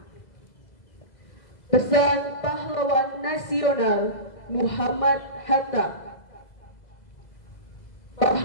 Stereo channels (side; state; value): right; late; 2.0 ms